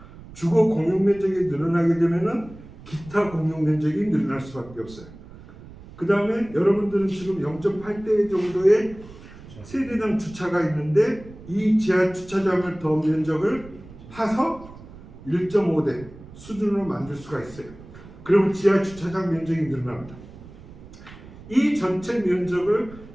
주거 공용 면적이 늘어나게 되면은 기타 공용 면적이 늘어날 수밖에 없어요. 그 다음에 여러분들은 지금 0.8대 정도의 세대당 주차가 있는데 이 지하 주차장을 더 면적을 파서 1.5대 수준으로 만들 수가 있어요. 그러면 지하 주차장 면적이 늘어납니다. 이 전체 면적을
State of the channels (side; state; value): right; noise; rumble, 18 dB below the sound